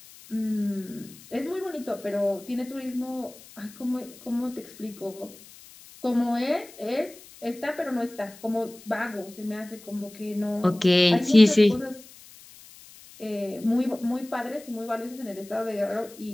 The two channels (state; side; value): noise; left; hiss, 21 dB below the sound